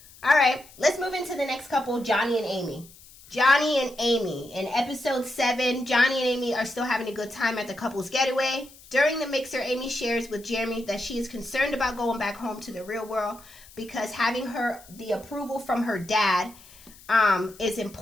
All right, let's move into the next couple, Johnny and Amy. Johnny and Amy. In episode 7, Johnny and Amy are still having a good time at the couple's getaway. During the mixer, Amy shares with Jeremy that she is concerned about going back home to the real world because having the approval from her dad is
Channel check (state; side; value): noise; left; hiss, 22 dB below the sound